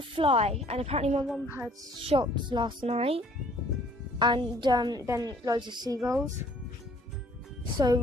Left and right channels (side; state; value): both; normal; correlation 0.58